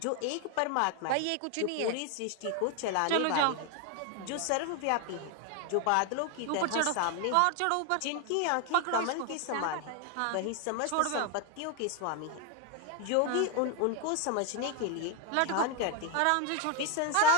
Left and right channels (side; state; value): both; different; correlation 0.01